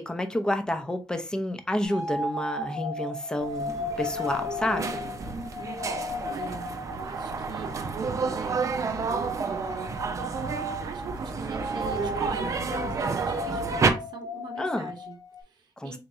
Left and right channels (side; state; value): both; normal; correlation 0.60